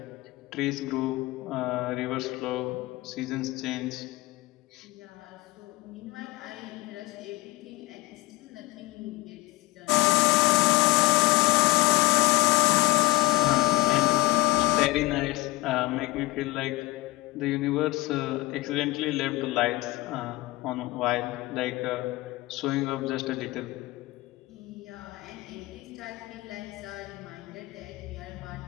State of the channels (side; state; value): right; quieter; 20.1 dB